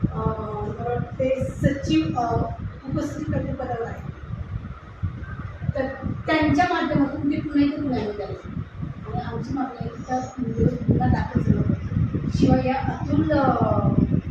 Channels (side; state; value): both; identical; correlation 1.00